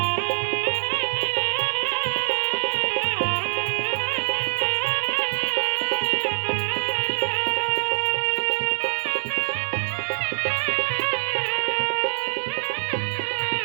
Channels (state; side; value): silent; left; 62 dB below the other